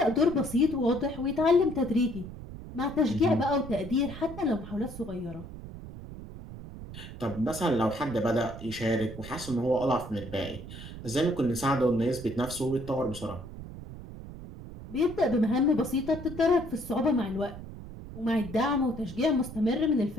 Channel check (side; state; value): right; noise; rumble, 12 dB below the sound